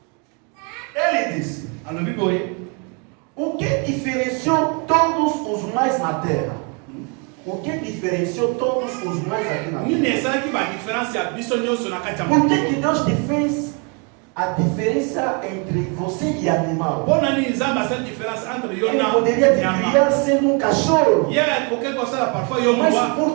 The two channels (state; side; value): quieter; left; 34.7 dB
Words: Ele disse: Alobi boye. o que diferenciou todos os mais na terra? O que diferenciou todos os mais aqui na terra? Nini esalaki ba différence ya biso nyonso na kati ya Por mokili. que Deus te fez a diferença entre você e animal? Pona nini nzambe asali différence entre yo Ele na poderia te nyama. criar sendo um cachorro. Ye akoki kosala parfois yo Mas mwa.